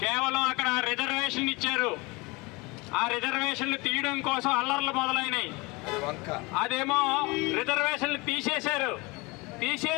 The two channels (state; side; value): quieter; right; 25.0 dB